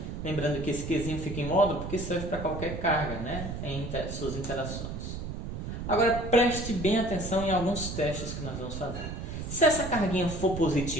Lembrando que esse Qzinho fica em módulo porque serve para qualquer carga, né? Em suas interações. Agora preste bem atenção em alguns testes que nós vamos fazer. Se essa carguinha for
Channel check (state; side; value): noise; right; rumble, 6 dB below the sound